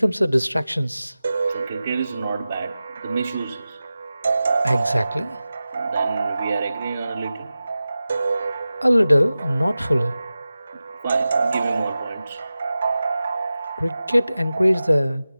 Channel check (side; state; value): both; inverted; correlation -0.95